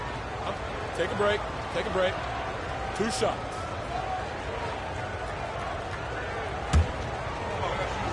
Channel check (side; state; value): both; identical; correlation 1.00